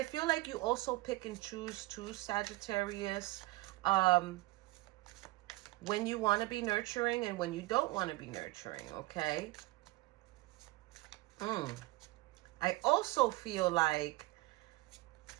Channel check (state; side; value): quieter; left; 20.3 dB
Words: feel like you also pick and choose too, Sagittarius, when you want to be nurturing and when you don't want to be nurturing, okay? I also feel like,